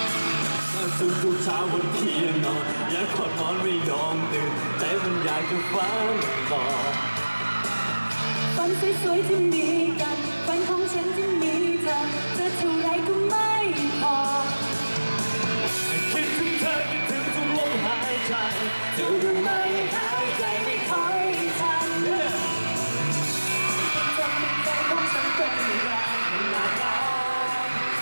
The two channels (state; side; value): inverted; both; correlation -1.00